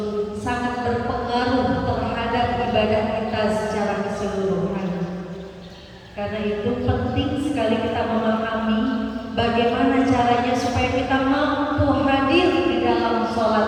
sangat berpengaruh terhadap ibadah kita secara keseluruhan. Karena itu penting sekali kita memahami bagaimana caranya supaya kita mampu hadir di dalam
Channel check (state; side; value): identical; both; correlation 1.00